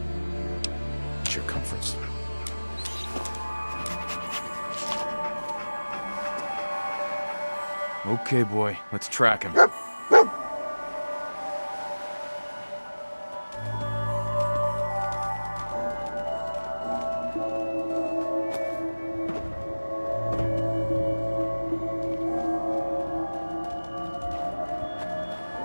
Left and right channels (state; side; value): inverted; both; correlation -1.00